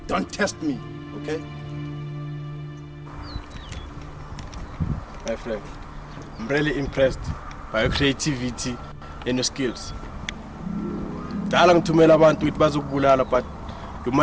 Don't test me, okay? My friend, I'm really impressed by your creativity and your skills. Dala ngithumela abantu ukuthi bazokubulala, but you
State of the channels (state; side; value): identical; both; correlation 1.00